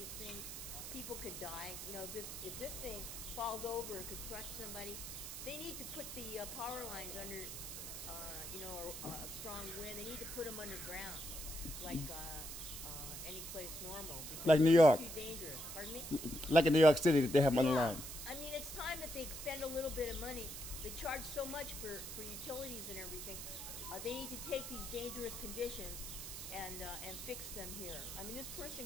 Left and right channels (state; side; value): noise; right; hiss, 7 dB below the sound